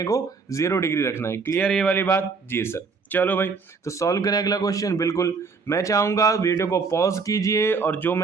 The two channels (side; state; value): left; quieter; 4.8 dB